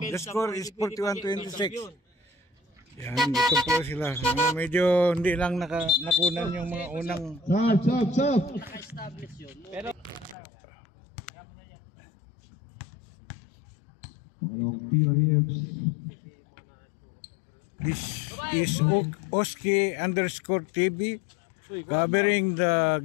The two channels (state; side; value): drops out; right; at 10.4 s